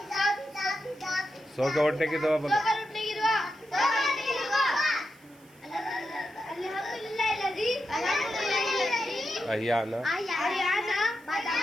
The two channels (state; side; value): noise; right; hiss, 29 dB below the sound